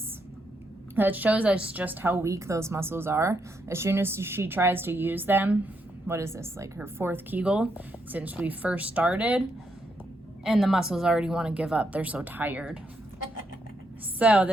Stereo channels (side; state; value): both; normal; correlation 0.79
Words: that shows us just how weak those muscles are. As soon as she tries to use them, what is this, like her 4th Kegel since we first started, and the muscles already want to give up. They're so tired. So